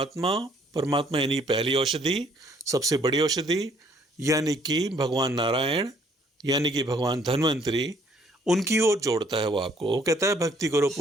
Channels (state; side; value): normal; both; correlation 0.63